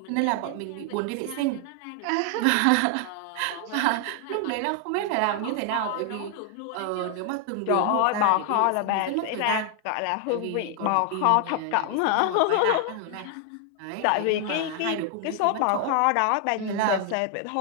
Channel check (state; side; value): different; both; correlation 0.00